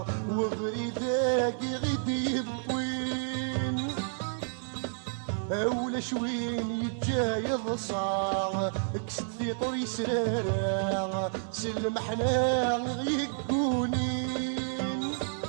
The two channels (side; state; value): left; silent; digital silence